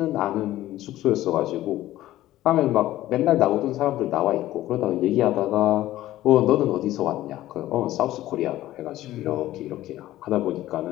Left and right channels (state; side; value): quieter; right; 14.8 dB